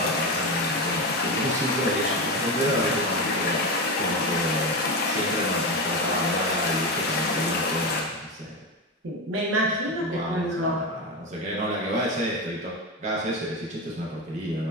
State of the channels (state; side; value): normal; both; correlation 0.17